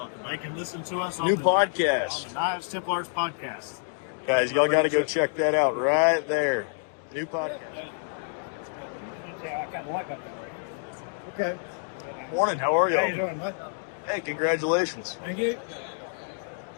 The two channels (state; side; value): silent; right; digital silence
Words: about? They can listen to us on New the podcast. on the Knives Templars podcast. Guys, y'all got to go check that out right there. New podcast. Yeah, I kind of like that. Okay. Morning. How are y'all? How you doing, bud? Hey, congratulations. Thank you.